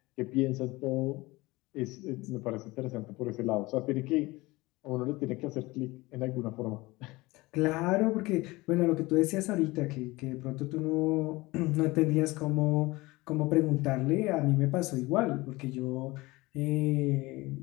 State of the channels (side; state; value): right; quieter; 21.5 dB